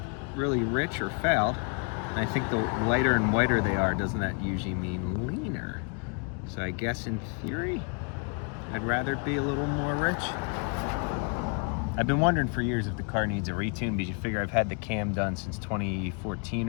really rich or fouled. And I think the lighter and whiter they are, doesn't that usually mean leaner? So I guess in theory, I'd rather it be a little more rich. I've been wondering for years if the car needs a retune, because you figure I've had the cam done since 2014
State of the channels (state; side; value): quieter; right; 37.3 dB